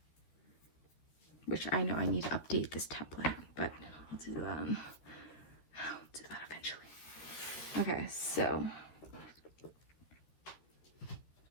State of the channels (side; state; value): right; late; 13 ms